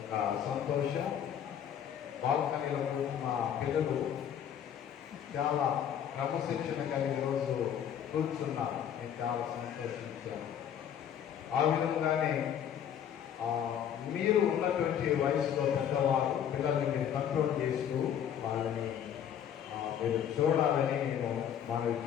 సంతోషం. బాల్కనీలో మా పిల్లలు చాలా క్రమశిక్షణగా ఈరోజు కూర్చున్నారు. నేను చాలా సంతోషించాను. ఆ విధంగానే మీరు ఉన్నటువంటి వయసులో పెద్దవాళ్ళు పిల్లల్ని మీరు కంట్రోల్ చేస్తూ వాళ్ళని మీరు చూడాలని నేను మనవి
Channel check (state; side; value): quieter; right; 9.2 dB